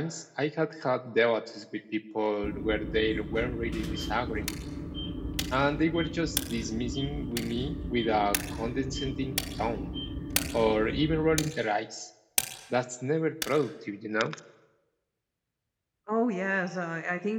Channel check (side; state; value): both; identical; correlation 1.00